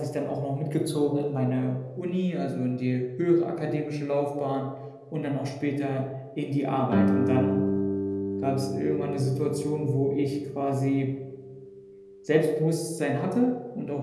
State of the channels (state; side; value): identical; both; correlation 1.00